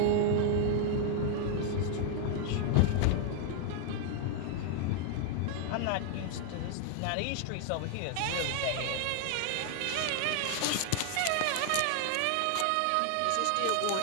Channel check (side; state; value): both; different; correlation 0.00